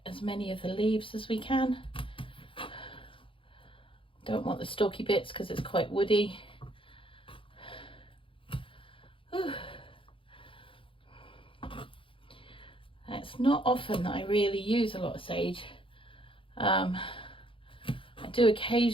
as many of the leaves as we can. Don't want the stalky bits because it's quite woody. Whew. It's not often that I really use a lot of sage. I do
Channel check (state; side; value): late; right; 0.25 ms